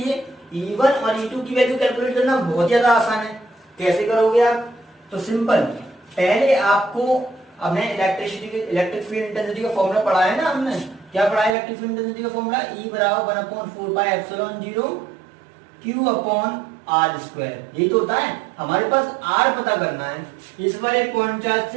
E1 और E2 की वैल्यू कैलकुलेट करना बहुत ज्यादा आसान है। कैसे करोगे आप? तो सिंपल, पहले आपको हमने इलेक्ट्रिक फील्ड इंटेंसिटी का फॉर्मूला पढ़ा है ना, हमने क्या पढ़ा है इलेक्ट्रिक फील्ड इंटेंसिटी का फॉर्मूला? E बराबर 1/4πε0 Q अपॉन आर स्क्वायर। यही तो होता है। हमारे पास R पता करना है। इस वाले पॉइंट चार्ज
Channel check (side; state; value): left; drops out; at 11.6 s